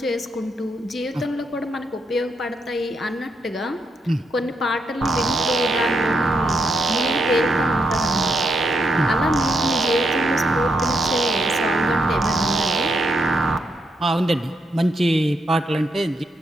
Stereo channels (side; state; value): both; normal; correlation 0.80